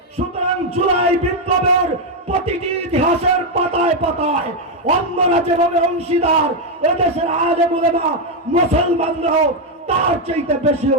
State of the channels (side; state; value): both; normal; correlation 0.03